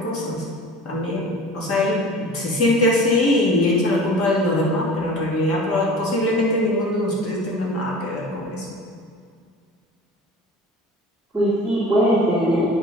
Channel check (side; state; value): both; normal; correlation 0.41